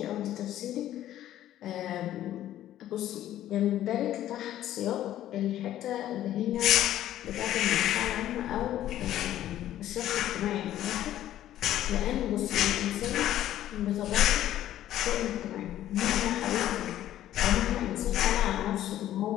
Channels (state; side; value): quieter; right; 12.7 dB